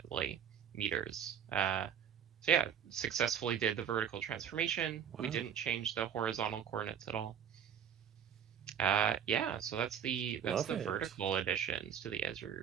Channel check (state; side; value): quieter; left; 8.3 dB